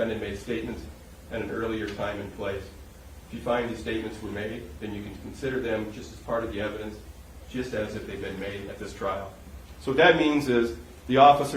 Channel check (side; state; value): both; identical; correlation 1.00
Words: made statements at an earlier time and place. If you find these statements were made, then you can consider them just as part of the evidence, just as if they've been made at this trial. So what that means is the